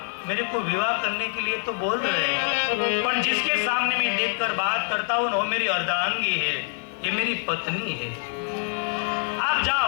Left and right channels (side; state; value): right; silent; 62 dB below the other